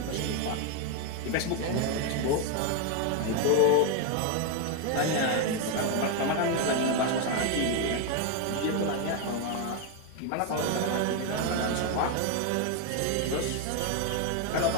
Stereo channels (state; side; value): different; both; correlation 0.01